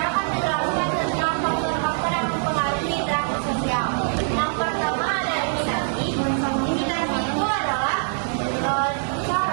akan menjelaskan tentang faktor-faktor yang mempengaruhi interaksi sosial. Yang pertama ada imitasi. Imitasi itu adalah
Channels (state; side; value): silent; left; 63 dB below the other